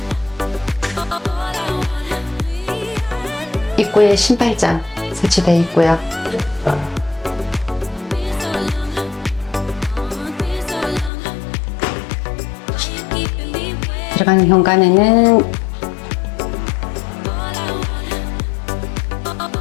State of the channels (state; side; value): drops out; right; at 11.1 s